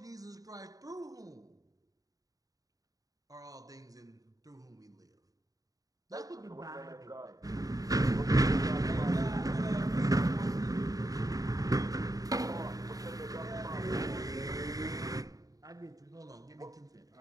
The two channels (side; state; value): left; late; 0.17 ms